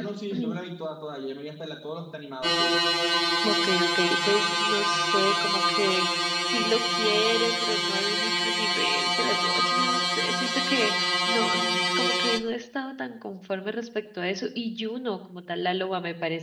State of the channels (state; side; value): identical; both; correlation 1.00